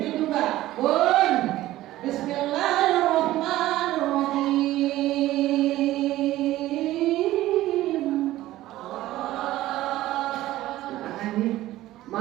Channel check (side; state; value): left; quieter; 15.5 dB